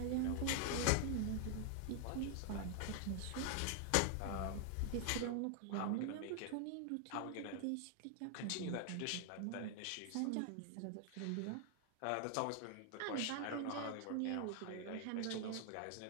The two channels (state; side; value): different; both; correlation 0.00